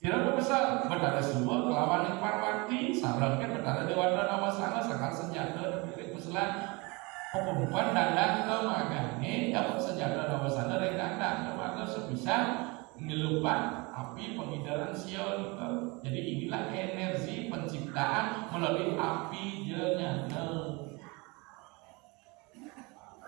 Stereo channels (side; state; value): left; quieter; 26.9 dB